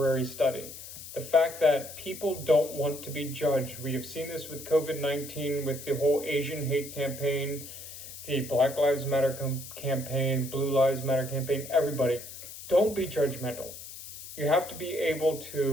study. The fact that people don't want to be judged. We have seen this with COVID-19, with the whole Asian hate campaign, the Black Lives Matter campaign, Blue Lives Matter campaign, everybody. Don't be judgmental. You have to be able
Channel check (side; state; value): left; noise; hiss, 13 dB below the sound